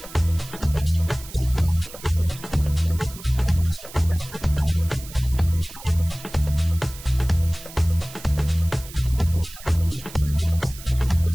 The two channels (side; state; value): right; noise; hiss, 16 dB below the sound